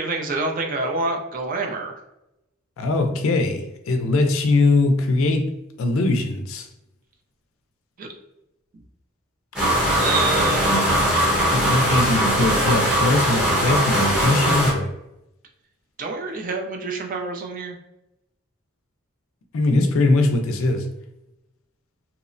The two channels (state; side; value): normal; both; correlation 0.51